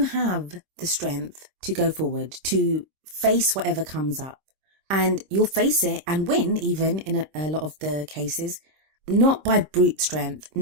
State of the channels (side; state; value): left; late; 26 ms